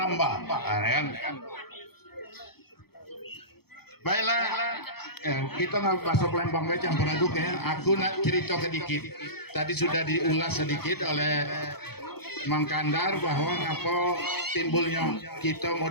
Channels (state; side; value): late; right; 0.96 ms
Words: Nah, kan? Baiklah, kita nggak masuk lembang baca campur aduk ya. Aku nak cerita sedikit. Tadi sudah diulas sedikit oleh Mang Kandar bahwa apa timbulnya kita